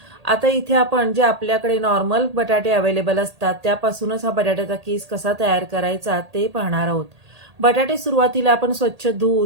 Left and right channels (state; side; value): late; left; 1.8 ms